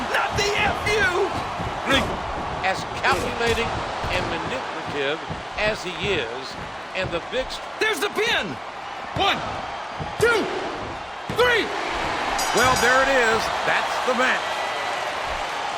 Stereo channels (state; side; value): identical; both; correlation 1.00